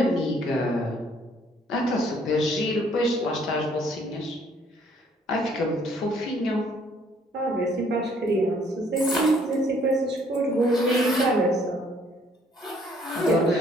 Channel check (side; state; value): both; normal; correlation 0.63